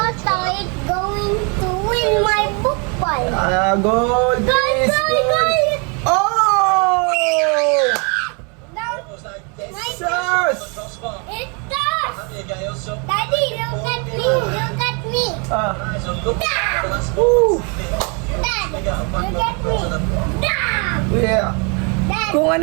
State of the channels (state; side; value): quieter; left; 34.4 dB